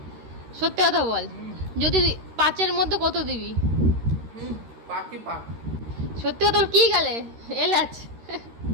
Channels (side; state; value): left; late; 13 ms